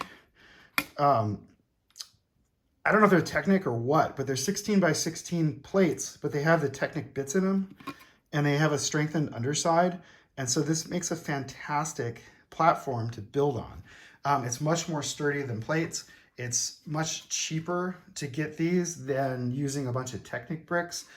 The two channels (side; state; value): both; identical; correlation 1.00